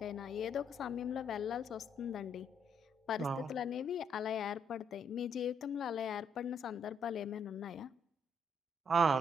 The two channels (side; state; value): both; normal; correlation 0.72